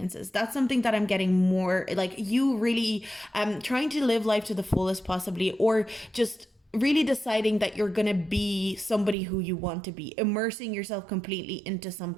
That's something that I'm getting more, you really trying to live life to the fullest possibly, or just really deciding that you're gonna be somebody who you want to be, immersing yourself completely into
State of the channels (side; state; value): left; drops out; at 9.2 s